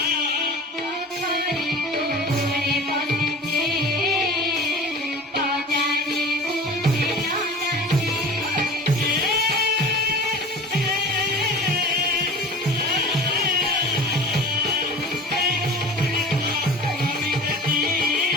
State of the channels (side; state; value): both; normal; correlation 0.39